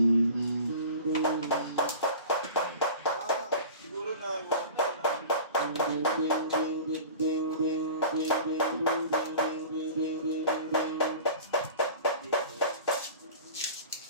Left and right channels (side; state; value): both; inverted; correlation -0.39